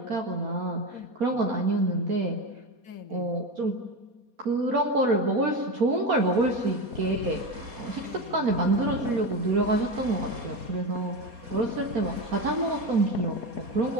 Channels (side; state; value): left; late; 4.2 ms